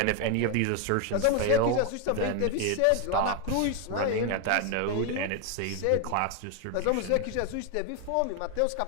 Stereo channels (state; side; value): different; both; correlation 0.01